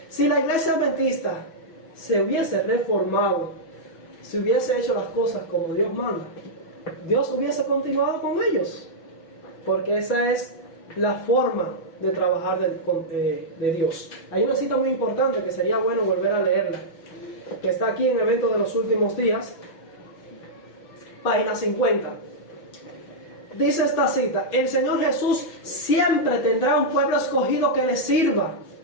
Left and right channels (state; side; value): late; right; 6.1 ms